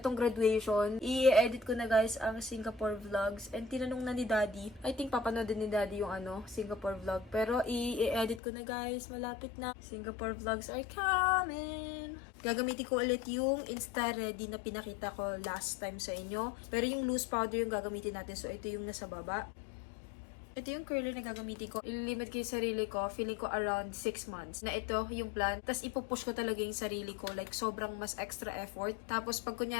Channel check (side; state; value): right; drops out; at 8.4 s